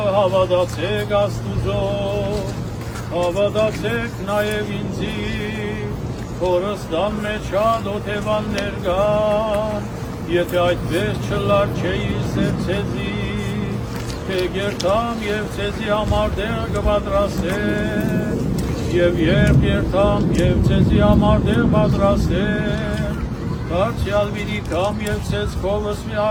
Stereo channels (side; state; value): both; identical; correlation 1.00